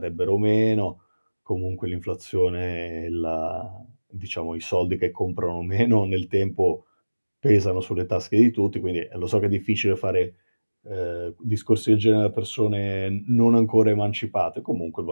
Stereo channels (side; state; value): both; inverted; correlation -1.00